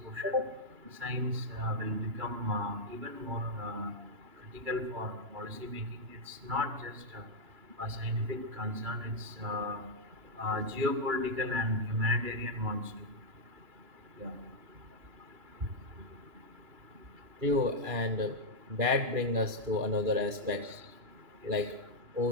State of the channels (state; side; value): late; left; 2.9 ms